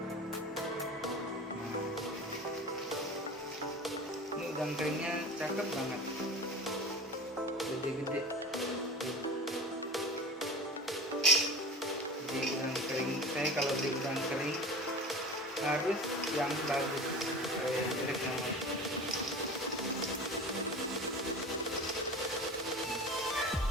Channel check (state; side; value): normal; both; correlation 0.36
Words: Ini udang keringnya cakep banget, gede-gede. Jadi udang kering, saya kalau beli udang kering harus yang bagus, yang jelek namanya.